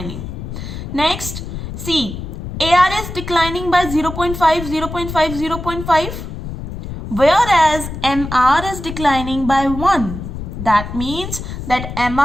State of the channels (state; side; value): noise; left; rumble, 8 dB below the sound